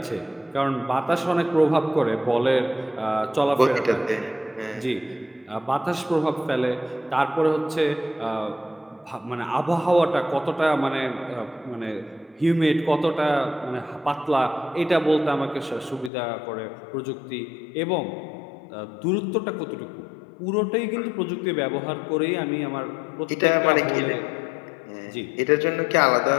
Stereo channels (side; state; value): right; drops out; at 16.1 s